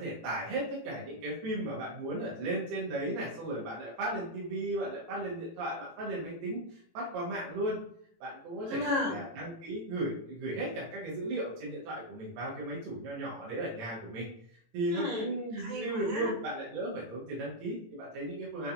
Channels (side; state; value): left; late; 18 ms